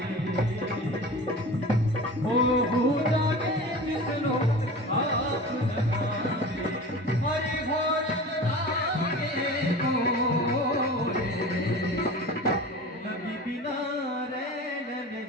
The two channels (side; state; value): both; normal; correlation 0.35